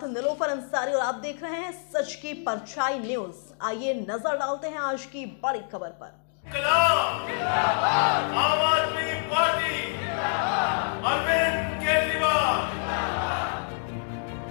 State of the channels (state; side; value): silent; right; digital silence